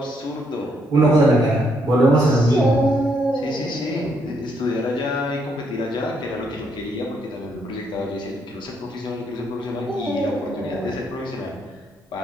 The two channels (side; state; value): both; normal; correlation 0.74